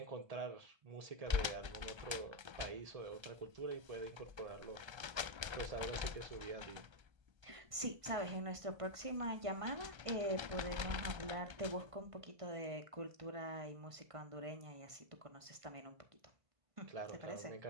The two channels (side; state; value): left; late; 1.3 ms